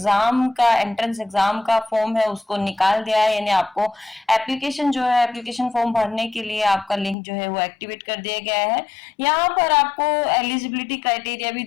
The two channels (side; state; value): right; drops out; at 7.2 s